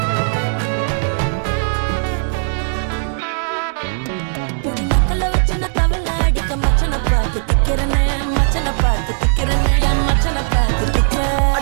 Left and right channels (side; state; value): left; silent; 68 dB below the other